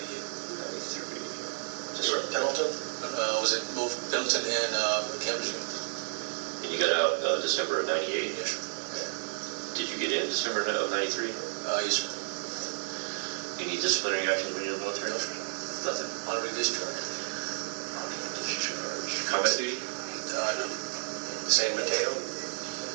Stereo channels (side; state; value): left; silent; 57 dB below the other